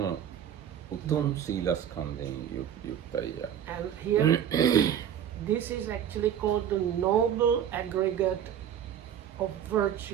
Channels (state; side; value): quieter; left; 9.5 dB